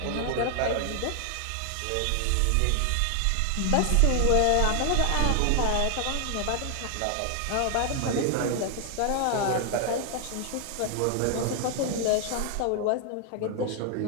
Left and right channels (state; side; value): different; both; correlation 0.00